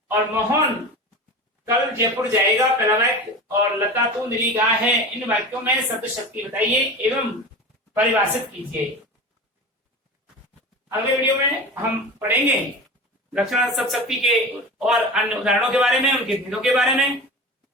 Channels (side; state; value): both; normal; correlation 0.31